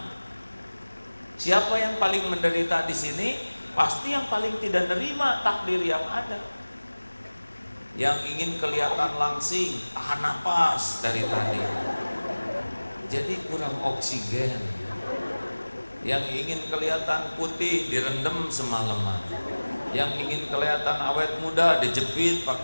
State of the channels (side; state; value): both; inverted; correlation -1.00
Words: Siapa yang paling menderita di sini? Pasti yang paling tidak menerima takdir yang ada. Yang ingin kelihatan langsing, tahan napas dari tadi. Jadi kurang oksigen. Yang ingin kelihatan putih direndam semalaman. Yang ingin kelihatan awet muda dijepit